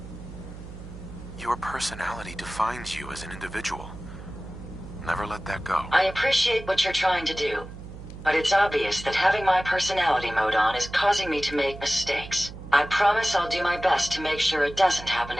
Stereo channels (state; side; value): noise; right; hum, 13 dB below the sound